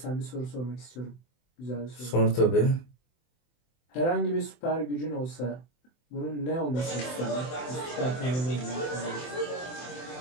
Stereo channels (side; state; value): right; late; 24 ms